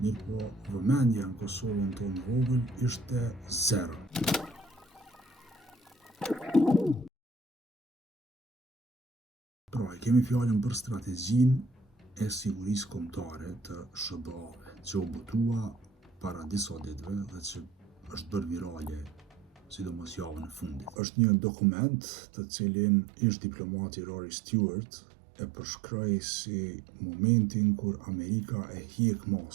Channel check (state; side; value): drops out; left; at 21.0 s